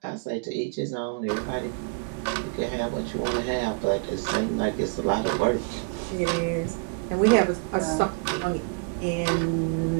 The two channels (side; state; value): left; quieter; 33.5 dB